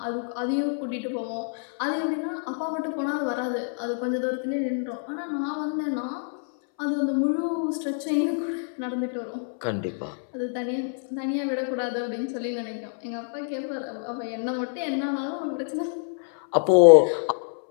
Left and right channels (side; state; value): right; silent; 60 dB below the other